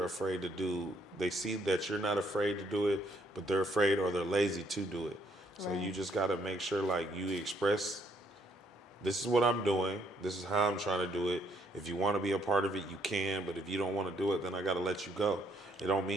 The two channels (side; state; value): both; normal; correlation 0.69